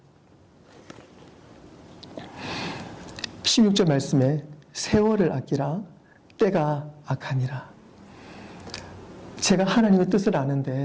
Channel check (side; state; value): both; identical; correlation 1.00